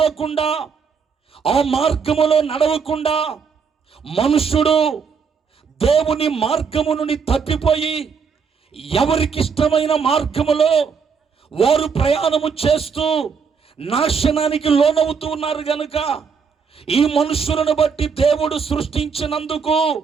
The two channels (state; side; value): quieter; left; 5.9 dB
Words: ఆ మార్గములో నడవకుండా, మనుషుడు దేవుని మార్గము నుండి తప్పిపోయి ఎవరికి ఇష్టమైన మార్గములో వారు ప్రయాణము చేస్తూ నాశనానికి లోనవుతూ ఉన్నారు గనుక ఈ మనుషులను బట్టి దేవుడు సృష్టించినందుకు